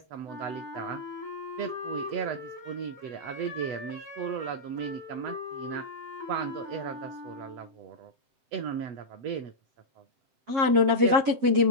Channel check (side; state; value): left; late; 7.4 ms